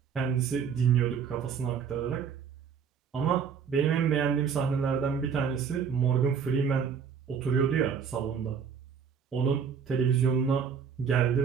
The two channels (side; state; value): left; quieter; 6.8 dB